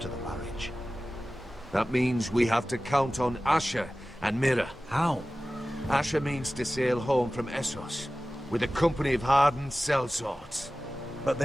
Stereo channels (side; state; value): both; normal; correlation 0.96